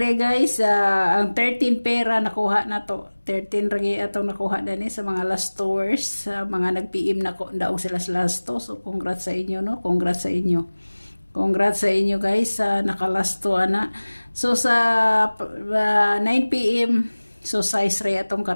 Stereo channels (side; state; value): both; inverted; correlation -1.00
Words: guys, ang 13 pera nakuha na to. 13 ragi atong nakuha dani sa mga last tours, sa mga nag-PM na ko daog sila sa last to. So congrats sa inyo no, congrats sa inyo guys sa nakalasto ana. So sa 9 PM, so size re atong